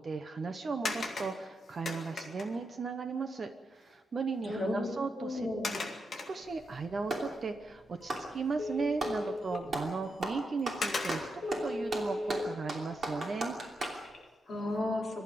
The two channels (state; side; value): normal; both; correlation 0.85